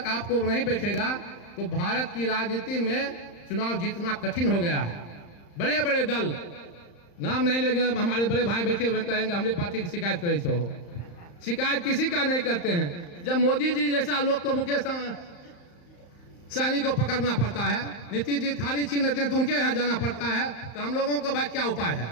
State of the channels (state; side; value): late; right; 35 ms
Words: आपको नहीं बैठेगा तो भारत की राजनीति में चुनाव जीतना कठिन हो गया है। बड़े बड़े दल, नाम नहीं लेंगे, हमारे बड़े भाई बैठे हुए कहेंगे हमारे पार्टी की शिकायत करे छो। शिकायत किसी का नहीं करते हैं। जब मोदी जी जैसा लोग को, मुकेश सहनी को पकड़ना पड़ता है, नीतीश जी थारी छीन लेते हैं तो उनके यहाँ जाना पड़ता है, तो हम लोगों को भाई क्या उपाय